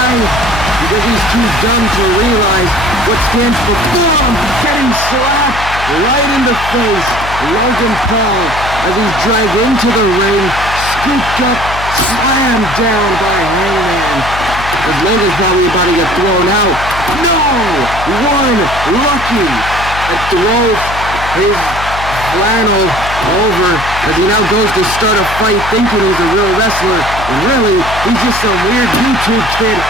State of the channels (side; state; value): left; noise; hum, 10 dB below the sound